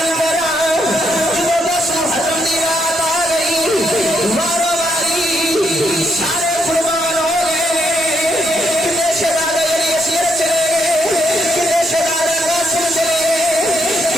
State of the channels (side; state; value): both; normal; correlation 0.76